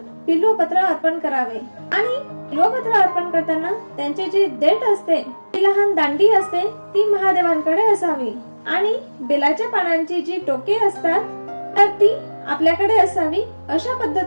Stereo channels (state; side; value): inverted; both; correlation -1.00